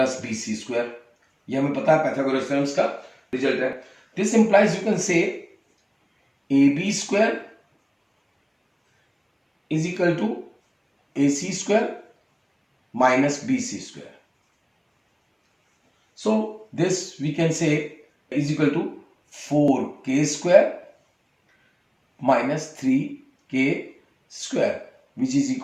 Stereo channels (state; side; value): identical; both; correlation 1.00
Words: BC square. ये हमें पता है Pythagoras theorem का रिजल्ट है. This implies you can say AB square is equal to AC square minus BC square. So this we can say is equal to 4k square minus 3k square, which is